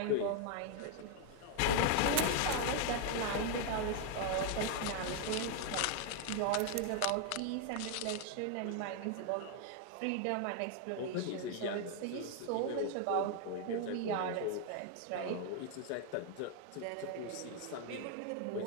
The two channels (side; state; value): both; different; correlation 0.00